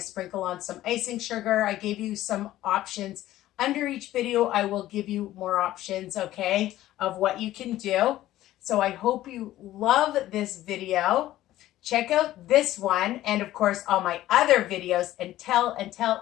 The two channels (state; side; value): quieter; right; 14.6 dB